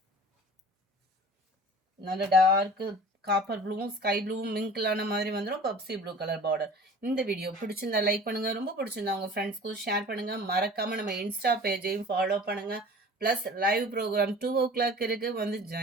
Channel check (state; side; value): normal; both; correlation 0.43